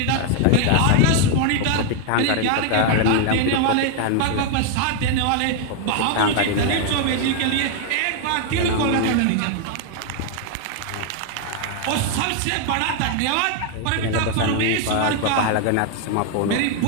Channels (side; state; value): both; different; correlation 0.00